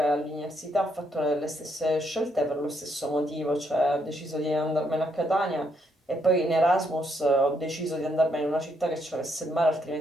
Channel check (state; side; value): normal; both; correlation 0.75